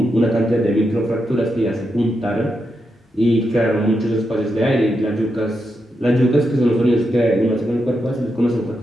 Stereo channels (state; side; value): normal; both; correlation 0.85